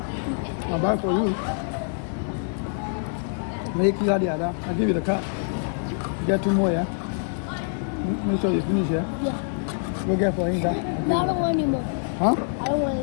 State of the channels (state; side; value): silent; right; 61 dB below the other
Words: I'll buy for you. Make you the other. I'll give you the card. Get two more, yeah? Make sure you finish, yeah? Yeah. Go get for him, that. No, I don't want any more. Huh? I don't want